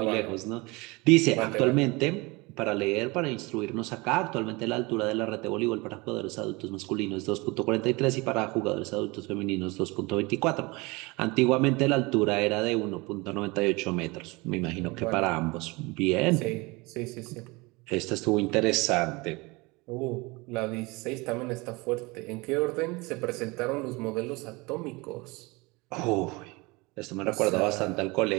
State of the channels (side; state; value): left; quieter; 24.9 dB